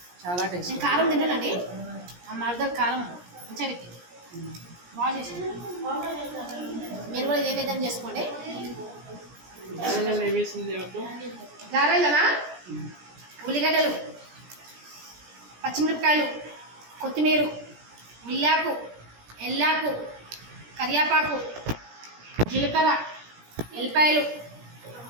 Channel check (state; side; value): late; left; 17 ms